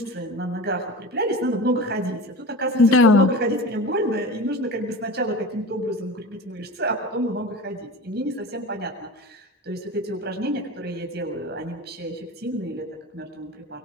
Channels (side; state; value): both; normal; correlation 0.32